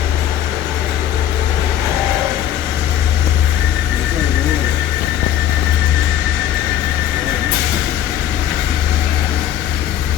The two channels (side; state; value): right; quieter; 10.7 dB